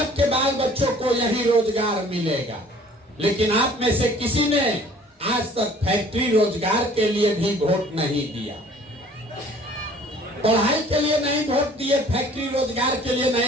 बाल बच्चों को यही रोजगार मिलेगा। लेकिन आप में से किसी ने आज तक फैक्ट्री रोजगार के लिए भी वोट नहीं दिया। पढ़ाई के लिए नहीं वोट दिए, फैक्ट्री रोजगार के लिए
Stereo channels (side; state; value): both; normal; correlation 0.53